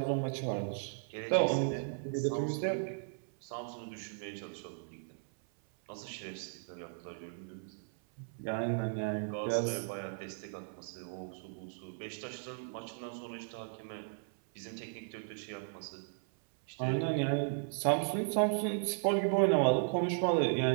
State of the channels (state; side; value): silent; left; 54 dB below the other